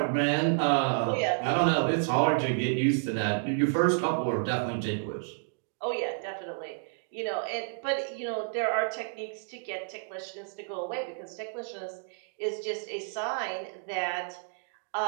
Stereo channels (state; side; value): silent; left; digital silence